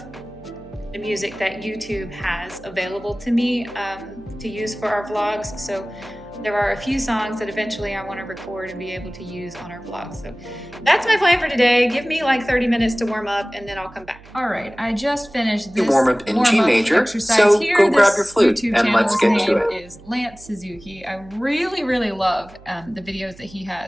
the music that YouTube has available to me to use for our vlogs. So there are a few songs that eventually I want to record and be able to use on our vlog. So that's my plan for today. Give me like 30 minutes to warm up and then I'll come back. All right, I just finished this warm up in G major, exercise so here. go grab your flute YouTube and let's get to it. Is Lance Suzuki. I really, really love the videos that he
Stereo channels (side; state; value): right; noise; hum, 23 dB below the sound